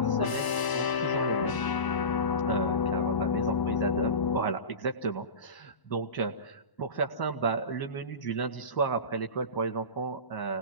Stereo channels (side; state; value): right; late; 1.0 ms